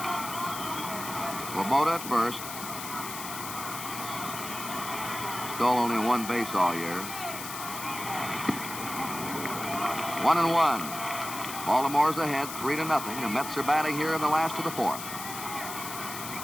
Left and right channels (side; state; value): left; noise; hiss, 8 dB below the sound